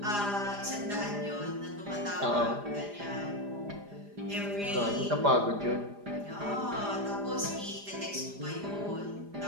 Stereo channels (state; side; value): late; left; 4.9 ms